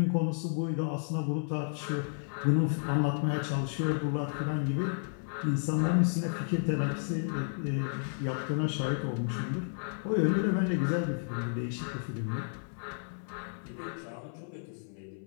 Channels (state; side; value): silent; right; 56 dB below the other